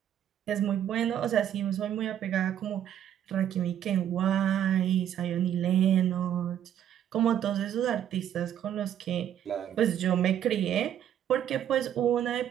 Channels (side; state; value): left; quieter; 10.2 dB